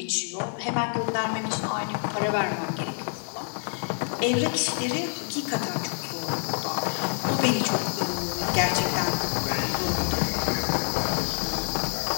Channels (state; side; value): silent; right; 60 dB below the other